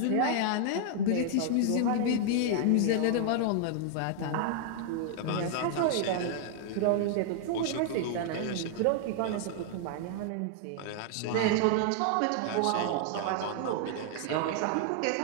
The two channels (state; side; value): different; both; correlation 0.00